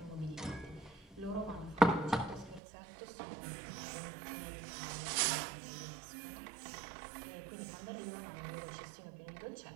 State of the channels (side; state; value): left; drops out; at 2.6 s